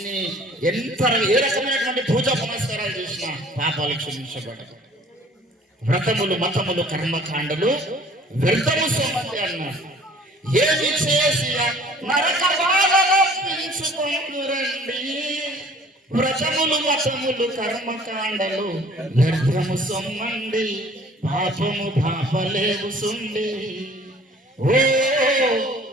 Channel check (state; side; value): normal; both; correlation 0.52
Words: ఏ రకమైనటువంటి పూజా పునస్కారాలు చేసినా పాపాలు క్షమించబడదు. వ్రతములు, మతములు, కర్మకాండలు వ్యర్థము సోమంది అన్నారు. ఏమి చేసి నరక బాధపించుకోండి. వ్రతములు, మతములు, కర్మకాండలు వ్యర్థము సొమ్మండి. పాపము పాపలేవు సుండి. ఓ